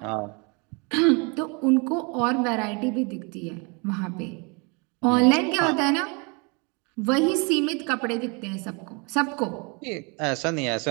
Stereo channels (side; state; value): left; quieter; 31.8 dB